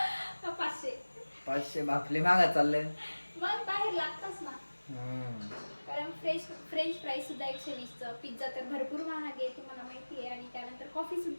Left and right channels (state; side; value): inverted; both; correlation -1.00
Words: 500 बापले मागा चालले. मग बाहेर लागतच ना, कारण फ्रेंच फ्राईज सुद्धा 120चं, पिझ्झा तर भरपूर महाग आहे तुम्हाला माहिती आहे, आणि त्यानंतर कॉफी